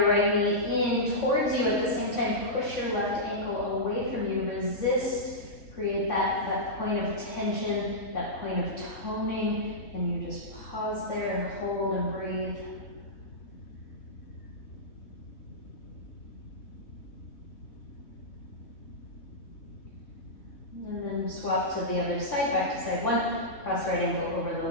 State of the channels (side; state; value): right; late; 3.5 ms